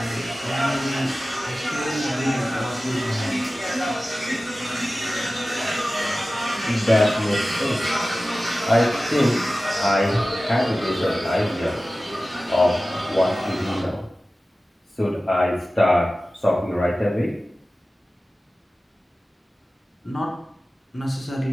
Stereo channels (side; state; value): both; normal; correlation 0.96